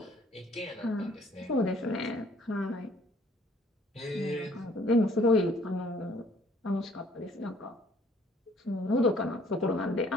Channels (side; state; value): both; normal; correlation 0.59